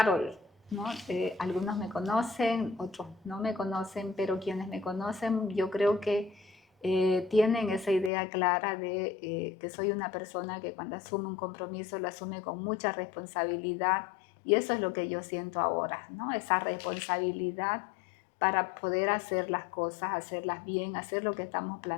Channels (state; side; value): drops out; right; at 8.1 s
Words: ¿No? Algunos me conocen, otros no me conocen, pero quienes me conocen yo creo que tienen esa idea clara de que soy una persona que cuando asume un compromiso lo asume con mucha responsabilidad y eso es lo que yo siento ahora, ¿no? Esa responsabilidad para poder hacer las cosas, hacerlas bien, hacer lo que estamos